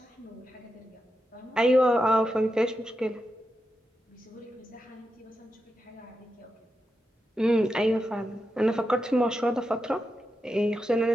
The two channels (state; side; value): normal; both; correlation 0.88